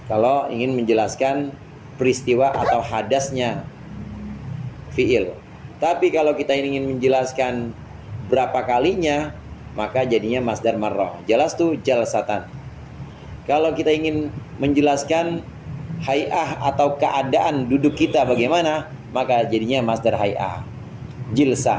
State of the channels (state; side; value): identical; both; correlation 1.00